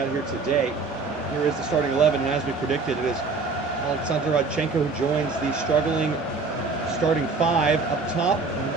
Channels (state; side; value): quieter; left; 4.2 dB